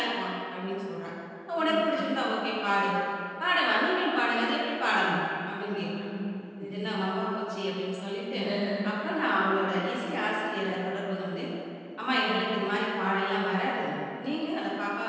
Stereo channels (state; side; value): identical; both; correlation 1.00